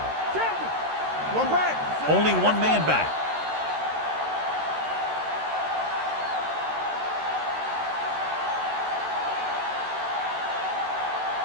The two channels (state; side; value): late; left; 13 ms